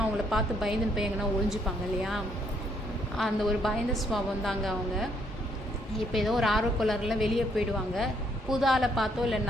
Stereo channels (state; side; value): normal; both; correlation 0.70